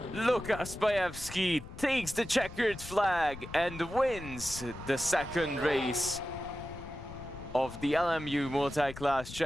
Lukas Bayevsky takes the checkered flag and wins the second race of the LMU Multiclass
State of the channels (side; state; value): left; noise; rumble, 13 dB below the sound